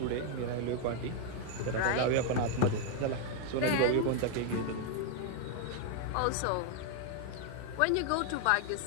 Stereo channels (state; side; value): different; both; correlation 0.00